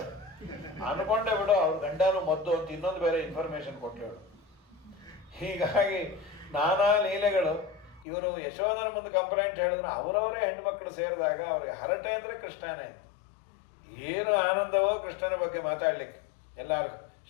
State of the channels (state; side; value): drops out; right; at 8.1 s